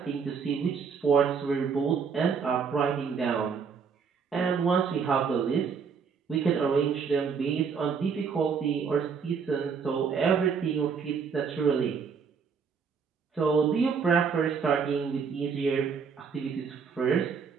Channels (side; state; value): left; quieter; 6.0 dB